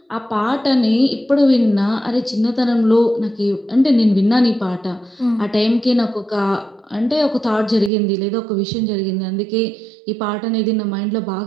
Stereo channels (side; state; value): left; drops out; at 7.9 s